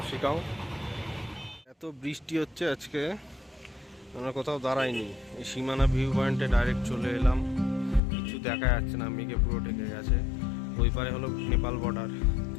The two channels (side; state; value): right; drops out; at 8.0 s